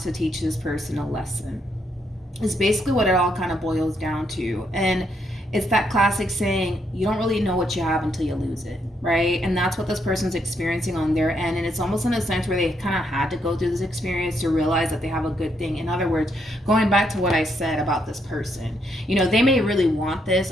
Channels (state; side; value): normal; both; correlation 0.76